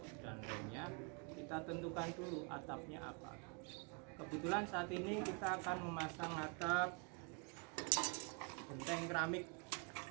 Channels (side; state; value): left; quieter; 32.8 dB